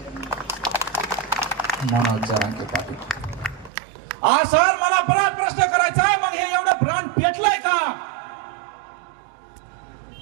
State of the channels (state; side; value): drops out; left; at 3.7 s